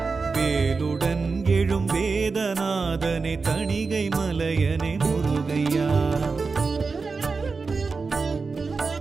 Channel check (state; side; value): quieter; left; 4.5 dB